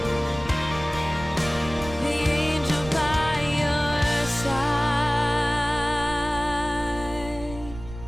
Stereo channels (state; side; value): noise; right; rumble, 13 dB below the sound